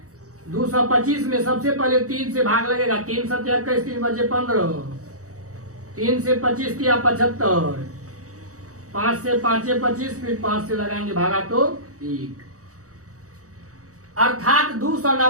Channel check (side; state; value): left; late; 0.65 ms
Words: 225 में सबसे पहले 3 से भाग लगेगा, 3 7 21, 3 बचे 15, 3 से 25 तिया 75, 5 से 5 25, फिर 5 से लगाएंगे भागा तो 1। अर्थात